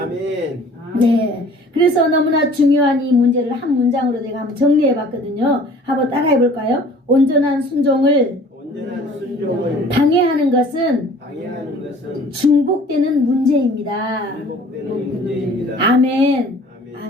아멘. 네, 그래서 너무나 중요한 이 문제를 한 문장으로 제가 한번 정리해 봤거든요. 한번 따라해 볼까요? 온전한 순종을 방해하는 것은 중복되는 문제입니다. 아멘.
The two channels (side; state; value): both; normal; correlation 0.50